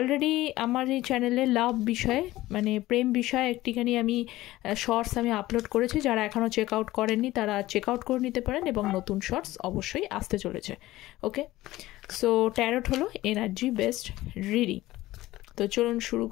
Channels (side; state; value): right; quieter; 16.9 dB